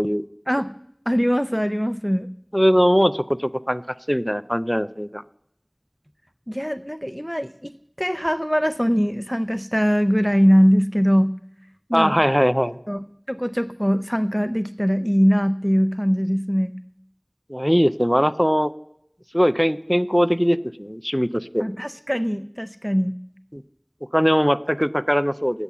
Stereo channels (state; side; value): identical; both; correlation 1.00